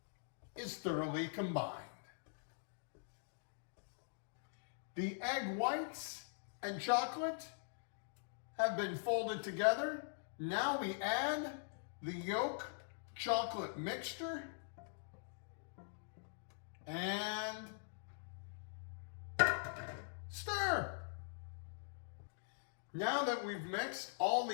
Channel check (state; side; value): silent; right; digital silence